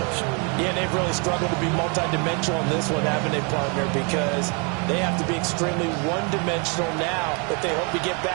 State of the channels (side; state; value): left; quieter; 34.5 dB